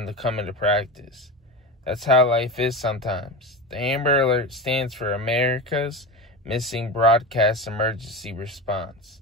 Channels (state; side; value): normal; both; correlation 0.24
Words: to come into practice. That's how life is sometimes. The Amber Alert stands for America's Missing Broadcast Emergency Response.